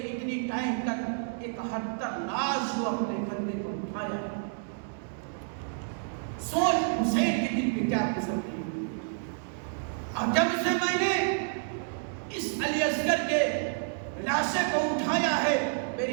اتنی ٹائم تک 71 لاش کو اپنے کندھے پر اٹھایا. سوچ حسین کے دل پہ کیا گزرتی ہے. اور جب سے میں نے اس علی اصغر کے لاشے کو اٹھایا ہے،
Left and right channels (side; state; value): left; silent; digital silence